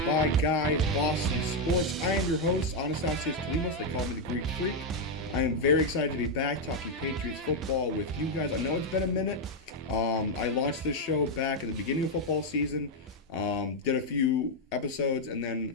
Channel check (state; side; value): normal; both; correlation 0.02